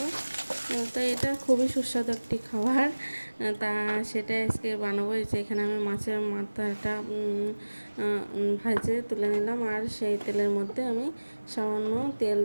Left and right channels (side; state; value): both; inverted; correlation -1.00